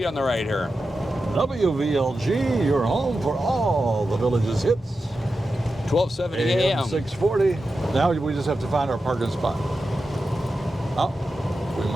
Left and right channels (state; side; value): normal; both; correlation 0.91